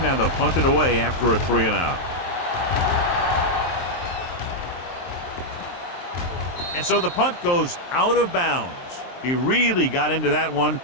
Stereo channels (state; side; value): late; right; 23 ms